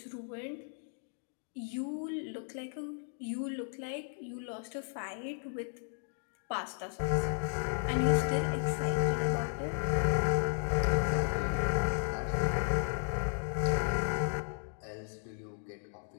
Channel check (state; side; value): silent; right; 55 dB below the other